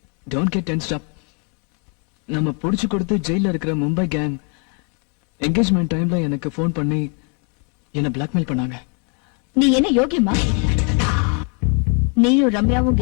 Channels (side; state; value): right; quieter; 36.2 dB